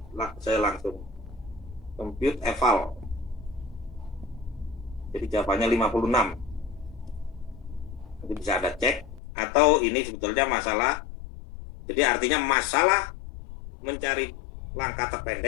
saya langsung. Compute eval. Jadi jawabannya 56. Nanti bisa Anda cek. Atau ini sebetulnya masalah, jadi artinya masalah mencari langkah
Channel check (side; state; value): right; drops out; at 9.2 s